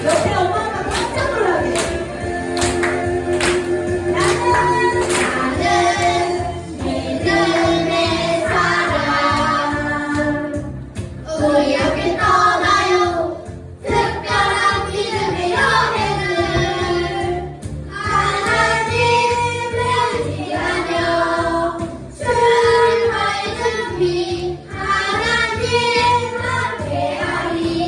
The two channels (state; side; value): identical; both; correlation 1.00